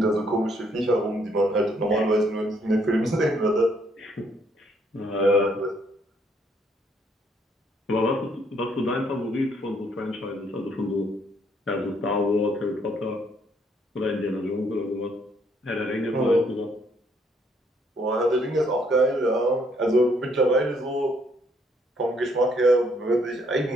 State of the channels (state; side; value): normal; both; correlation 0.68